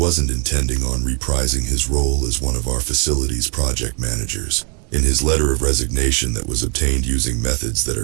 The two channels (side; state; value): left; quieter; 37.9 dB